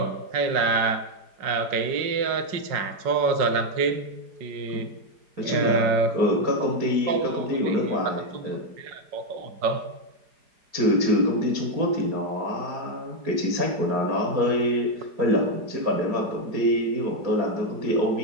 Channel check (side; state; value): left; late; 4.8 ms